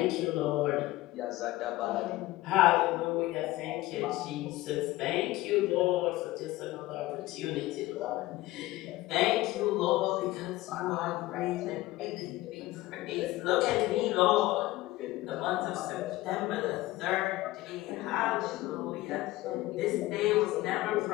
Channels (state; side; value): quieter; right; 17.9 dB